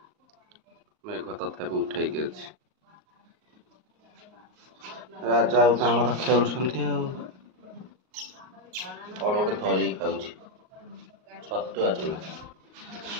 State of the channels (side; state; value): left; late; 38 ms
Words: मेघ तथापि उठे राजा आमर खेलुं कौन गोटे धरिकी खाऊ छतुआ चूना।